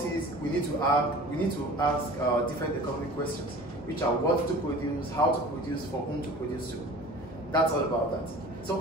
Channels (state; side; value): normal; both; correlation 0.42